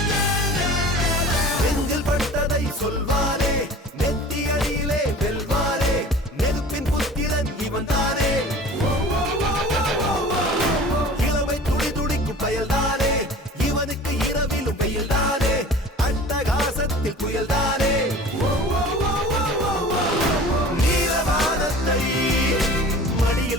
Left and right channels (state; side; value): normal; both; correlation 0.42